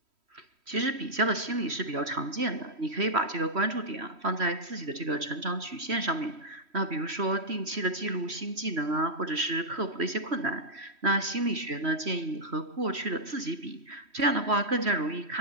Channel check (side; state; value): left; late; 3.1 ms